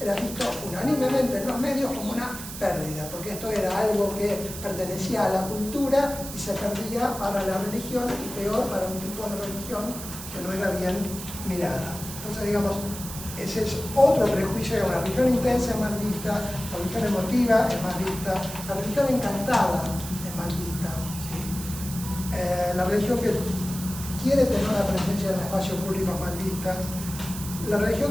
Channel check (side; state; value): right; noise; hiss, 10 dB below the sound